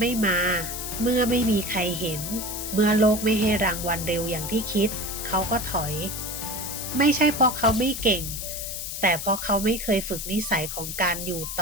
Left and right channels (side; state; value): left; noise; hiss, 6 dB below the sound